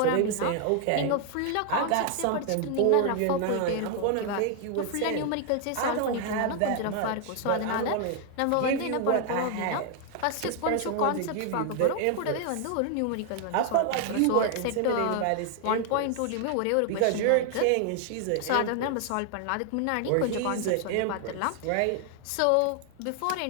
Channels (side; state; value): both; different; correlation 0.00